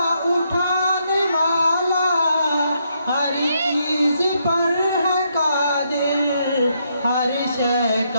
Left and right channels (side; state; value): both; inverted; correlation -0.76